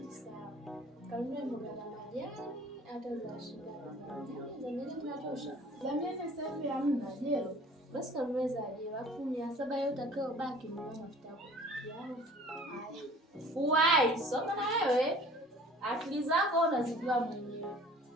sawa. Kanunua mboga za majani hata za shida. Za nini tunatosha? Za miezi sasa hivi hamna jelo. Basi kamweza aje, alafu 700 yote utakayobaki ni mafuta yako. Uwai, soma na wewe. Akili zako unazijua mwenyewe.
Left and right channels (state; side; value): normal; both; correlation 0.49